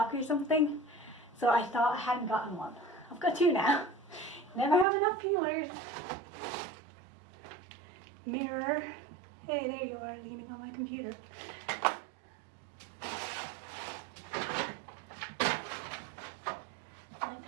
or something, so I thought I hadn't gotten one. I've got 2 now. Never have enough peelers. Mirror. Hey, there you are, leaning on my computer. My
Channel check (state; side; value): drops out; left; at 4.9 s